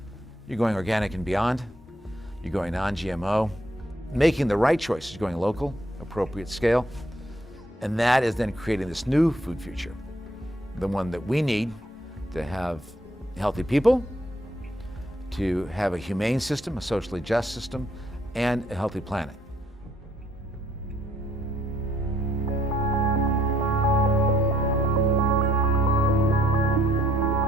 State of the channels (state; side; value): normal; both; correlation 0.67